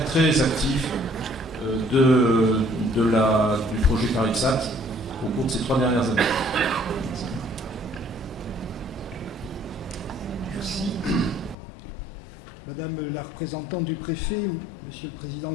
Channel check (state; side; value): drops out; right; at 11.6 s